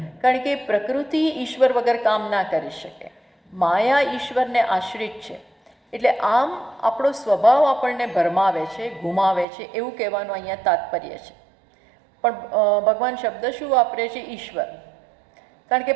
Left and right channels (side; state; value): left; drops out; at 9.5 s